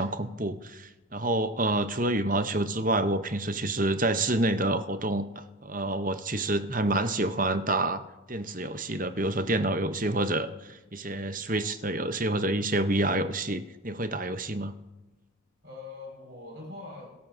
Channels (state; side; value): normal; both; correlation 0.30